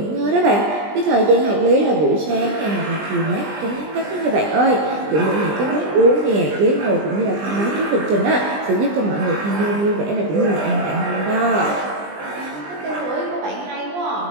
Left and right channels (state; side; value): late; left; 20 ms